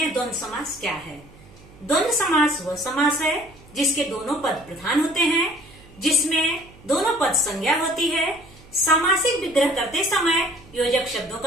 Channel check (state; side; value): noise; right; hum, 24 dB below the sound